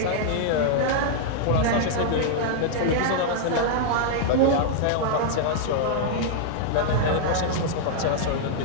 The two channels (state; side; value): different; both; correlation -0.01